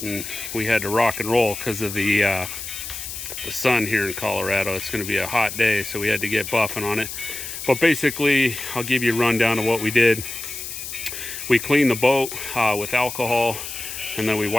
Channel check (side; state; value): left; noise; hiss, 8 dB below the sound